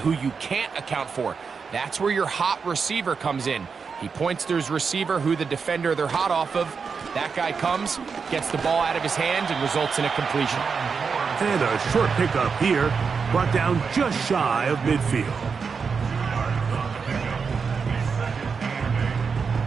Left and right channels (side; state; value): left; quieter; 5.5 dB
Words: you can't account for. That's where your hot receiver comes in. He points to his receiver, who the defender they're hot off of. That guy comes, gets the ball out of his hands, and results in a completion. And a short pickup here, brought down just shy of midfield.